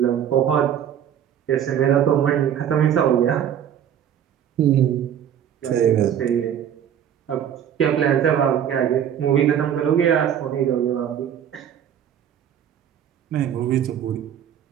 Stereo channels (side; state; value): left; quieter; 9.6 dB